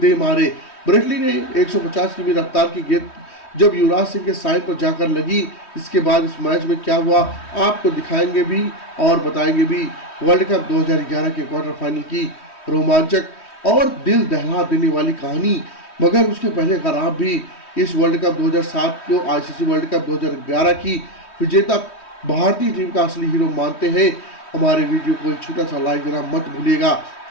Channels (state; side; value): late; right; 3.1 ms